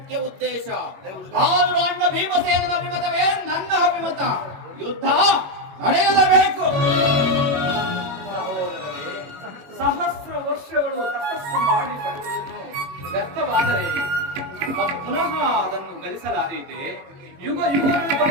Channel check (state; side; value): late; left; 21 ms